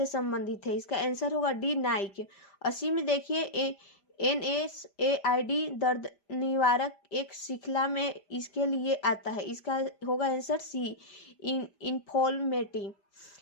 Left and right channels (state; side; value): late; right; 5.0 ms